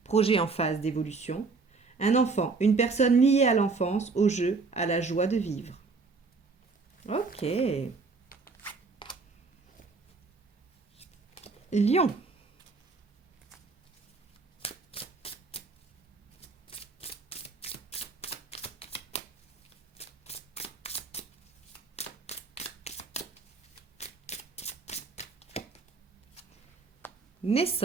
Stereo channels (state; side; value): quieter; left; 4.3 dB